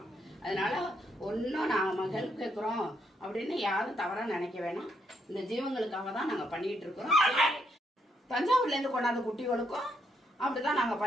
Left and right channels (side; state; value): both; normal; correlation 0.76